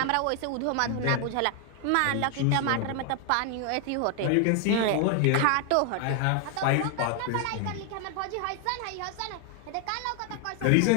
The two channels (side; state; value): both; different; correlation 0.00